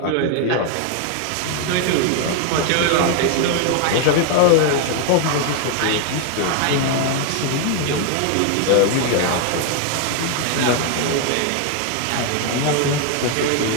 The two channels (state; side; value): different; both; correlation 0.00